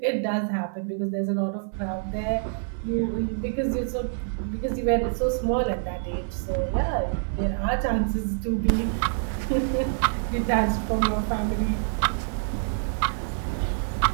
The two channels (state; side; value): silent; left; digital silence